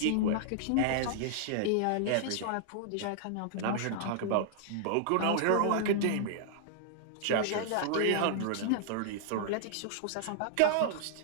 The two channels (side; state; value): both; different; correlation -0.01